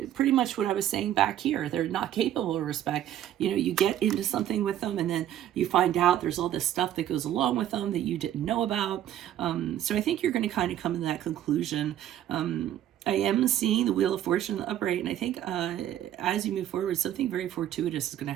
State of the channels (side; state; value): left; quieter; 11.6 dB